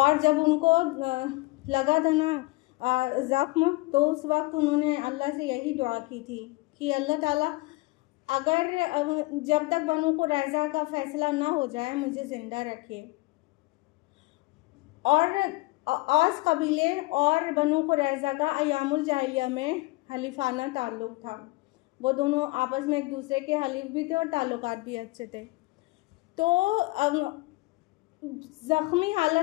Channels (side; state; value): right; quieter; 23.1 dB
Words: जब उनको लगा था ना ज़ख्म, तो उस वक्त उन्होंने अल्लाह से यही दुआ की थी कि अल्लाह ताला अगर जब तक बनु कुरैज़ा का फ़ैसला ना हो जाए मुझे ज़िंदा रखे। और औस कबीले और बनु कुरैज़ा का अयामुल जाहिलिया में हलीफाना ताल्लुक़ था, वो दोनों आपस में एक दूसरे के हलीफ भी थे और ताल्लुकात भी अच्छे थे। तो ज़ख्मी